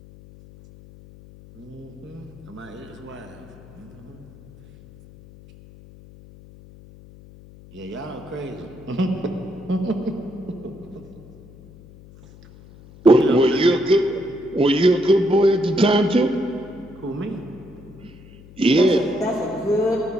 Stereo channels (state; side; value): noise; left; hum, 21 dB below the sound